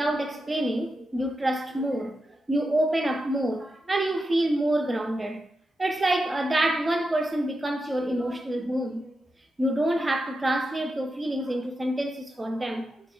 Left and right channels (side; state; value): both; normal; correlation 0.88